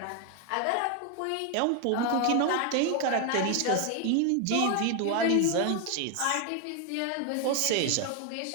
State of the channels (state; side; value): different; both; correlation 0.01